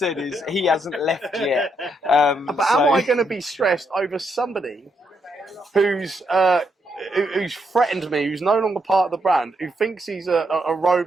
is he hasn't left yet. But am I going to be stressed over somebody who's threatened me, who's no longer part of the brand, who thinks he's a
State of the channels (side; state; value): both; normal; correlation 0.78